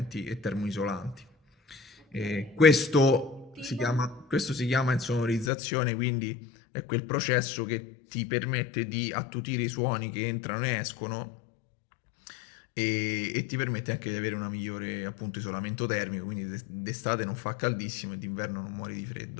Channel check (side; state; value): right; drops out; at 5.5 s